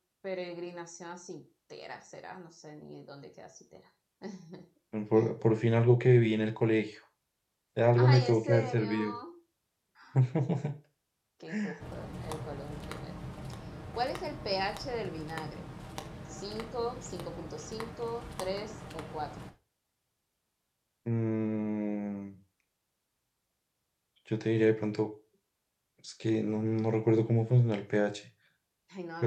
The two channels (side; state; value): both; identical; correlation 1.00